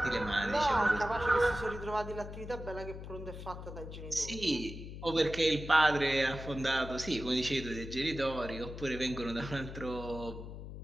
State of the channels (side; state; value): left; noise; hum, 10 dB below the sound